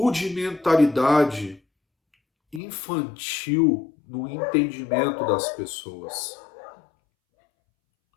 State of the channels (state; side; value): drops out; right; at 2.6 s